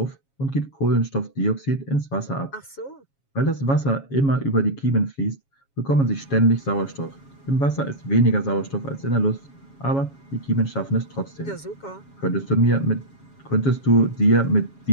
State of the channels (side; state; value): right; late; 7.3 ms